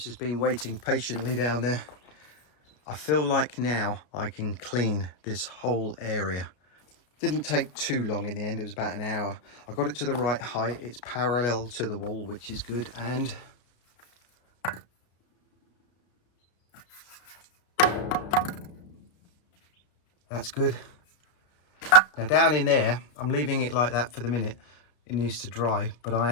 has been waiting patiently down there. I feel like now I can clean this whole area. Didn't take too long in the end, it was about an hour. I got it to the right height, it's parallel to the wall, which is good, and that's good. Now down in there, I'm leaving it like that for the minute. It needs to dry, but I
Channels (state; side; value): late; right; 33 ms